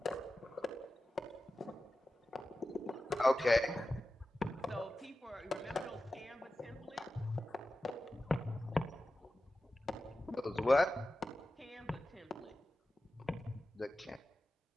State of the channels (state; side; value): normal; both; correlation 0.93